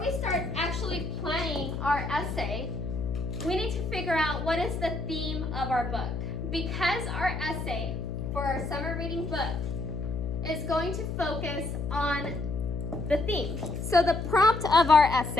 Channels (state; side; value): noise; left; hum, 4 dB below the sound